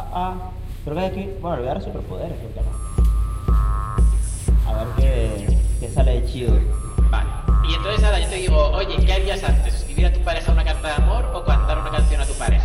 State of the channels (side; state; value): both; identical; correlation 1.00